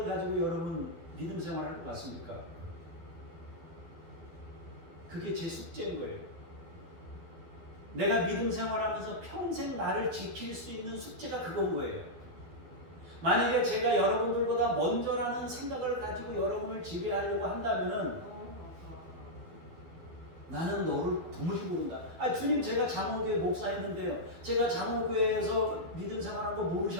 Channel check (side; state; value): left; late; 12 ms